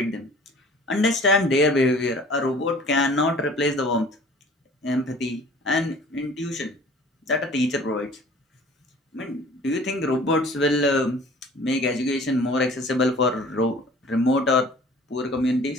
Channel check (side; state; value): both; normal; correlation 0.49